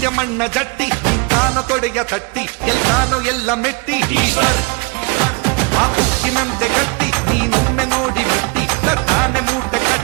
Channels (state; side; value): quieter; left; 30.2 dB